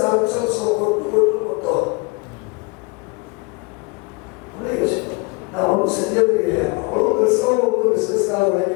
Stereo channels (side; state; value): right; quieter; 28.1 dB